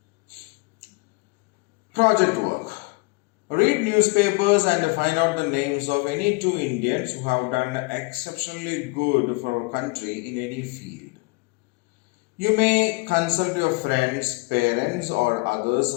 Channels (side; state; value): right; quieter; 27.2 dB